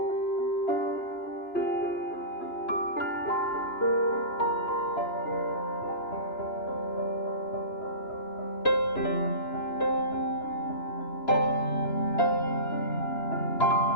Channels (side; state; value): right; late; 2.9 ms